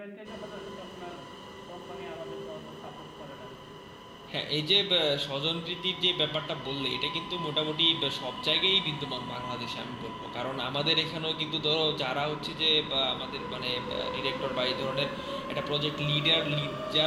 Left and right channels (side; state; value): both; identical; correlation 1.00